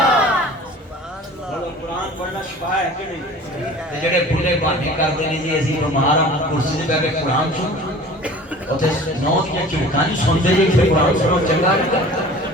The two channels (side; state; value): both; normal; correlation 0.43